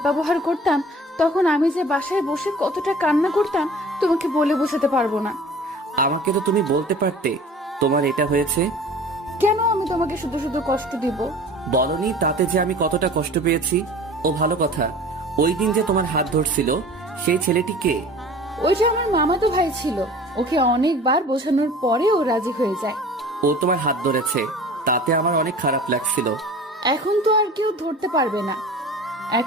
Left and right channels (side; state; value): both; normal; correlation 0.43